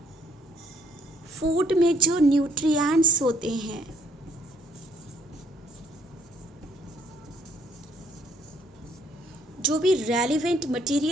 Food में जो nutrients होते हैं जो भी relevant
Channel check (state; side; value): normal; both; correlation 0.66